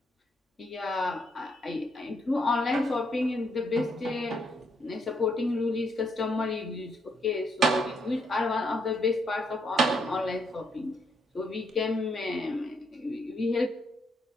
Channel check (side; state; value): both; normal; correlation 0.75